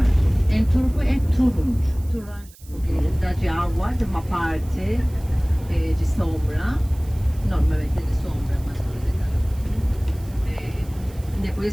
Em turco é turunç. Toranja. Porque dá de água, de uma parte de sombra. Normalmente de sombra, mas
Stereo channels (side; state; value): right; noise; hiss, 24 dB below the sound